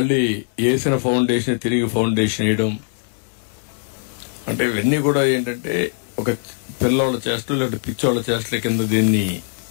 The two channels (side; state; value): right; silent; digital silence